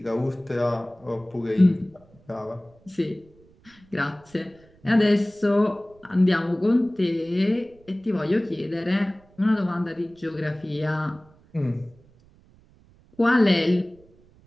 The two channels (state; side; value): noise; right; rumble, 29 dB below the sound